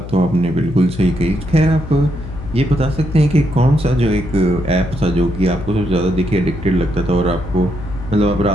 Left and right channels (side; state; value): left; noise; hum, 11 dB below the sound